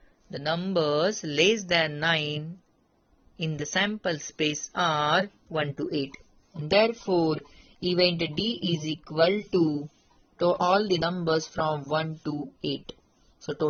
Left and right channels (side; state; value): both; identical; correlation 1.00